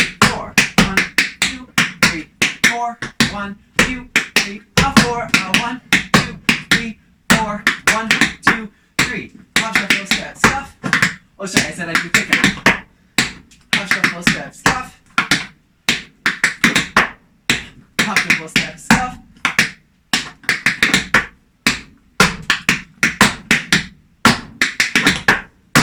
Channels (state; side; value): identical; both; correlation 1.00